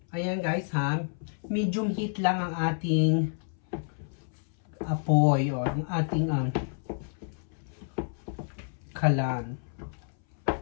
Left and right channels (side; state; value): right; silent; 58 dB below the other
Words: Ayan, guys, ha. Medium heat lang ang ating apoy o ang ating kalan.